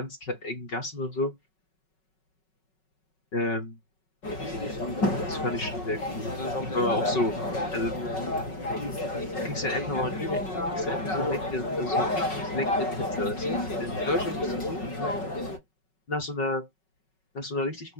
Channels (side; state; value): right; late; 5.4 ms